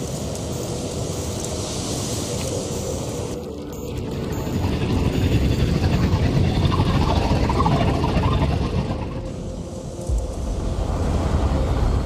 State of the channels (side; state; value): both; identical; correlation 1.00